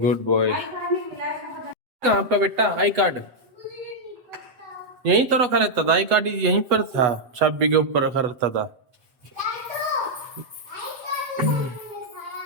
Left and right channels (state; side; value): late; left; 8.1 ms